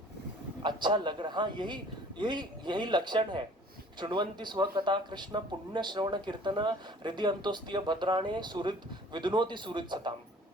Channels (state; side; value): normal; both; correlation 0.51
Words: अच्छा लग रहा, हाँ, यही यही यही लक्षण है। शृण्वन्ति स्व कथा कृष्ण पुण्य श्रवण कीर्तन हृदय अंतोस्तीय भद्राणे सुहृद विदुनोति सुहृद सताम।